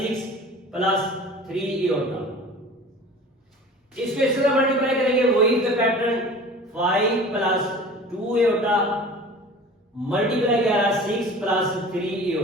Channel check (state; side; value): normal; both; correlation 0.41